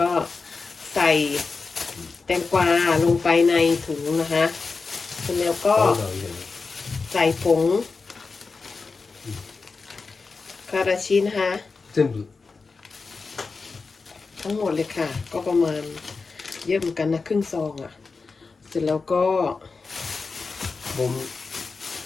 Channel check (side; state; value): right; quieter; 4.4 dB